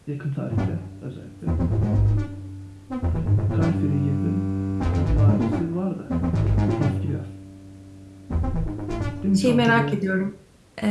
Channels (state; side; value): identical; both; correlation 1.00